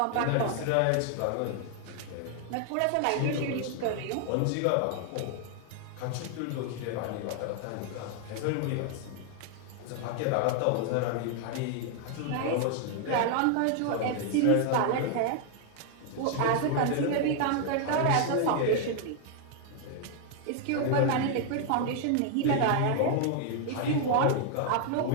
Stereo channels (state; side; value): different; both; correlation 0.00